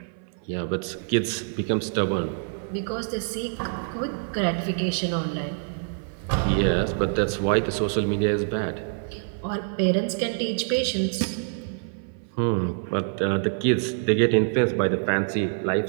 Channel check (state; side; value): silent; left; 57 dB below the other